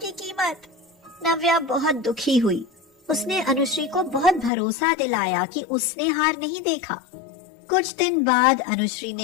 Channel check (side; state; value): right; drops out; at 4.5 s